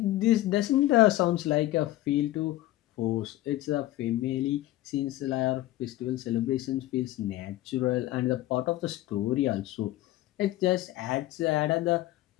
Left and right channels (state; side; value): quieter; right; 15.9 dB